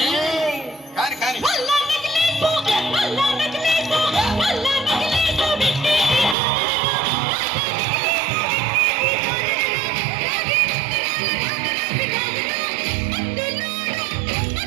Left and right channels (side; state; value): left; drops out; at 6.4 s